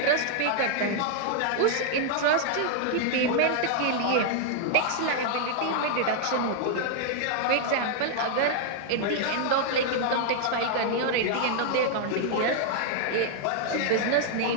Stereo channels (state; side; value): different; both; correlation 0.00